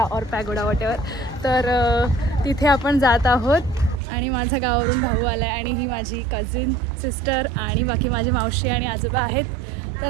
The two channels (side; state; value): left; drops out; at 4.0 s